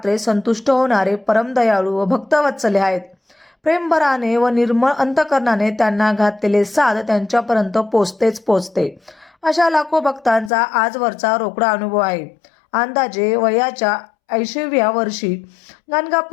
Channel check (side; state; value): right; drops out; at 10.5 s